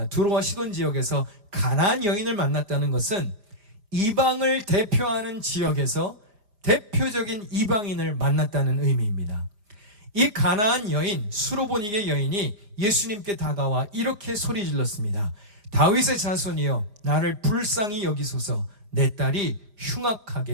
두로와 시돈 지역에서 가나안 여인을 만났다는 것은 이방을 대표하는 지역에서 대표적인 이방인을 만났다는 의미입니다. 이 가나안 여인, 수로보니게 여인이 예수님께 다가와 이렇게 소리 질렀습니다. 다윗의 자손이여 나를 불쌍히 여기소서. 내 딸이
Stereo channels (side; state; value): left; late; 4.9 ms